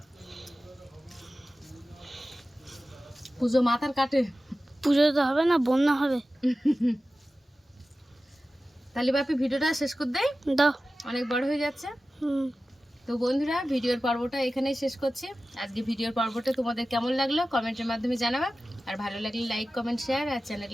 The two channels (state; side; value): normal; both; correlation 0.95